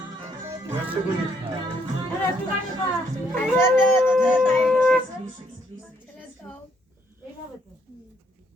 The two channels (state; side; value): normal; both; correlation 0.70